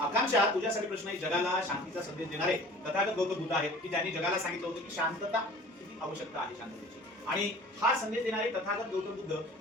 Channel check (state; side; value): normal; both; correlation 0.45